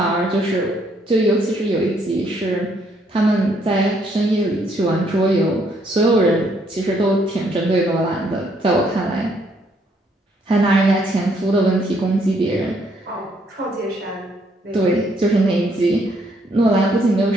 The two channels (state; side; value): normal; both; correlation 0.69